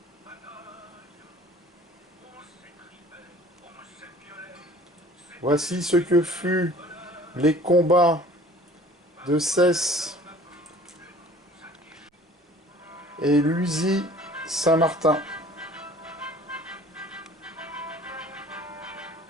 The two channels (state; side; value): normal; both; correlation 0.49